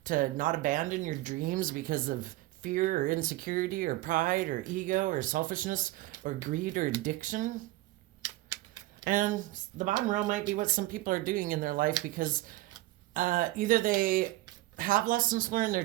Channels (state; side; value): quieter; left; 17.9 dB